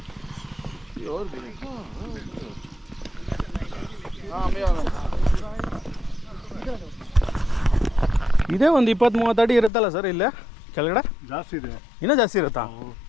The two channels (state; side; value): drops out; right; at 9.7 s